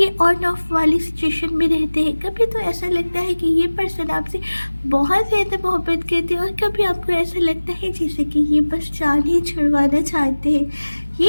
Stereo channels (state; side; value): inverted; both; correlation -1.00